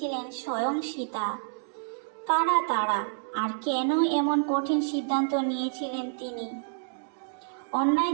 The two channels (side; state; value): left; silent; digital silence